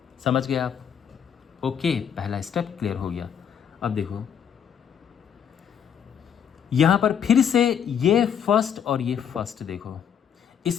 समझ गए आप? ओके, पहला स्टेप क्लियर हो गया। अब देखो यहाँ पर फिर से ये फर्स्ट और ये फर्स्ट, देखो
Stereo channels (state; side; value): quieter; right; 8.2 dB